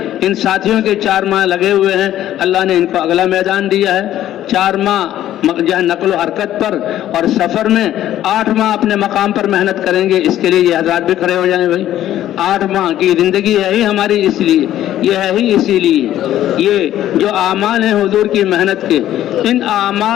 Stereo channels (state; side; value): quieter; right; 12.5 dB